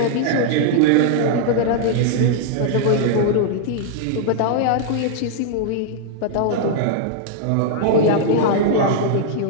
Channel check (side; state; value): both; different; correlation -0.01